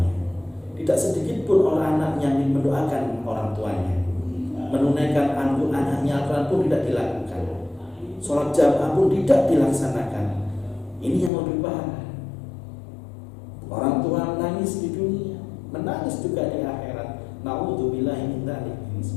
Tidak sedikit pun orang anaknya mendoakan orang tuanya. Menunaikan anaknya Al-Quran pun tidak dilakukan. Sholat jamaah pun tidak dilaksanakan. Ini yang lebih parah. Orang tua menangis di dunia, menangis juga di akhirat. Na'udzubillahi min dzalik.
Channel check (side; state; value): right; drops out; at 11.3 s